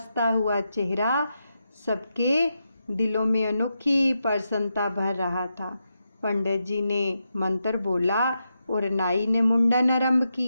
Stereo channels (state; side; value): inverted; both; correlation -0.86